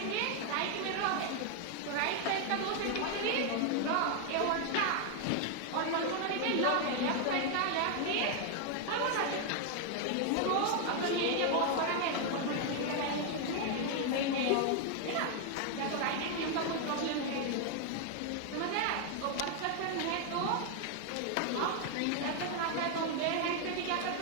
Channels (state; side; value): different; both; correlation 0.00